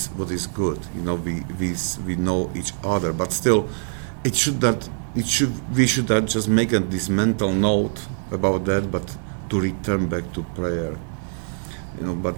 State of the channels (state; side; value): silent; left; 63 dB below the other